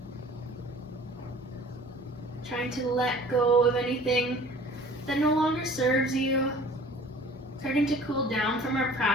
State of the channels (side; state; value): both; normal; correlation 0.48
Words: Trying to let go of anything that no longer serves you. Starting to cool down from our